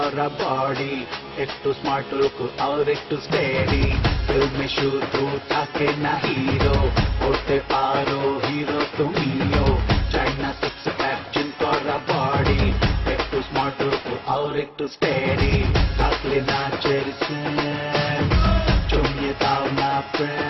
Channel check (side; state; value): both; identical; correlation 1.00